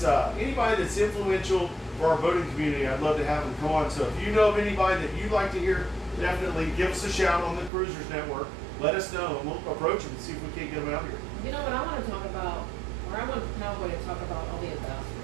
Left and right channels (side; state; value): left; drops out; at 7.7 s